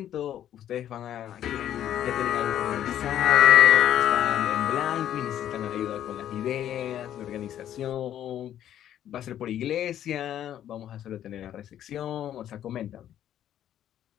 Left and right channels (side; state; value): right; quieter; 11.1 dB